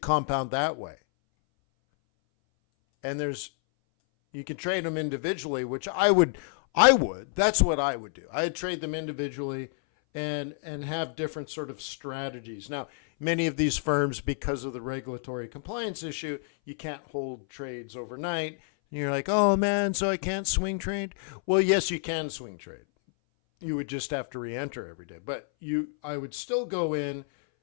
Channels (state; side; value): silent; right; 58 dB below the other